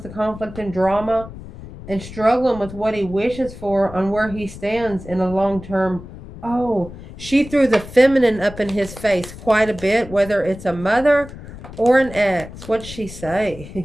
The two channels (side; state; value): left; noise; rumble, 14 dB below the sound